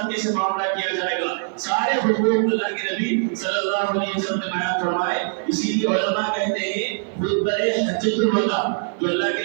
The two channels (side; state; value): left; silent; 56 dB below the other